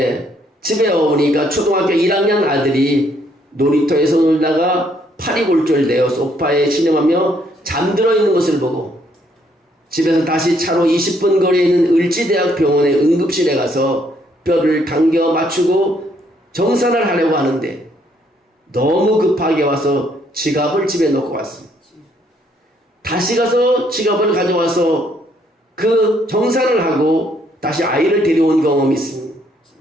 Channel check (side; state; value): both; normal; correlation 0.69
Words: 집에 오니까 초등학교 1학년 아들이 놀이터에서 놀다가 팔이 골절되어 소파에 신음하며 잠들어 있는 것을 보고 집에서 다시 차로 20분 거리에 있는 을지대학병원의 응급실에 가서 뼈를 당겨 맞추고 정산을 하려고 하는데 너무 급하게 와서 지갑을 집에 놓고 왔습니다. 다시 가서 지갑을 가져와서 그 정산을 하고 다시 아이를 데려온 경험이 있습니다.